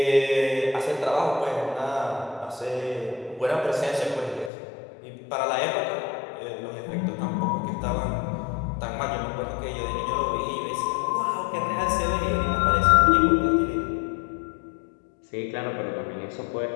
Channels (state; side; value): drops out; right; at 4.5 s